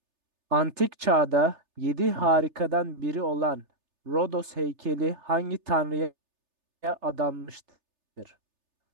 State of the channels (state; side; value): late; left; 3.3 ms